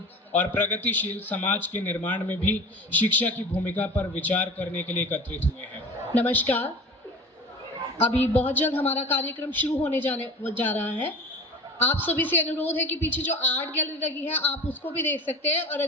और प्रगतिशील समाज के निर्माण में भी शिक्षा की भूमिका पर विचार करने के लिए एकत्रित हुए हैं। नमस्कार। अभी बहुत जल्द हमारा कार्यक्रम शुरू होने जा रहा है। आप सभी से अनुरोध है कि पीछे जो आर्ट गैलरी लगी है आप उसको भी देख सकते हैं, और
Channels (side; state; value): both; normal; correlation 0.36